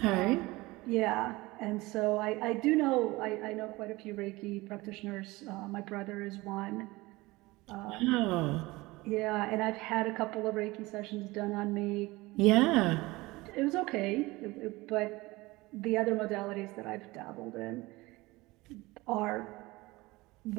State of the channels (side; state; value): left; quieter; 21.1 dB